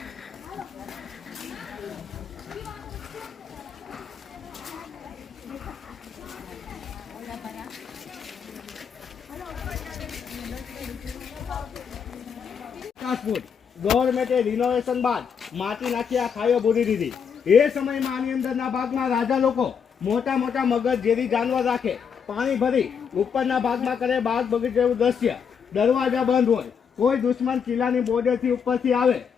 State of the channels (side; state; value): right; quieter; 6.9 dB